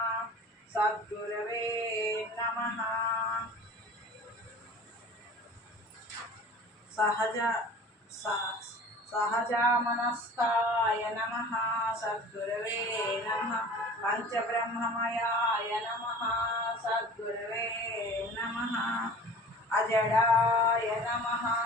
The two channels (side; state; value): both; normal; correlation 0.42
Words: సద్గురవే నమః సహజామనస్కాయ నమః సద్గురవే నమః పంచబ్రహ్మమయాయ నమః సద్గురవే నమః అజడాయ నమః